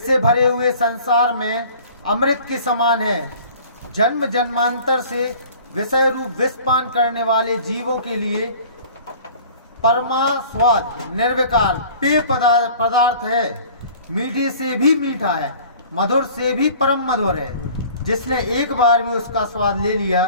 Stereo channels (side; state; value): both; inverted; correlation -0.47